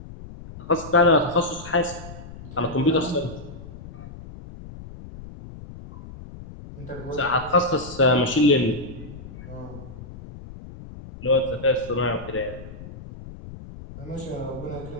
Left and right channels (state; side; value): noise; left; rumble, 14 dB below the sound